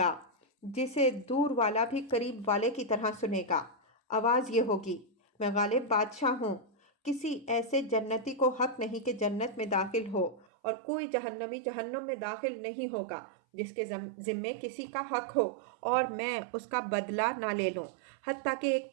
جسے دور والا بھی قریب والے کی طرح سنے گا۔ آواز یہ ہوگی، میں غالب بادشاہ ہوں، کسی ایسے جنتی کو حق نہیں کہ جنت میں داخل ہو، اور کوئی جہنمی جہنم میں داخل نہیں ہوگا جس کے ذمے کسی کا حق ہو اور میں اس کا بدلہ نہ لے لوں، حتیٰ کہ ایک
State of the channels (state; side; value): drops out; left; at 10.5 s